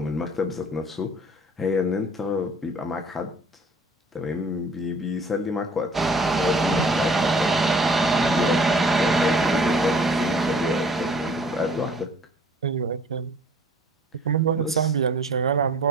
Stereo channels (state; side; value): normal; both; correlation 0.53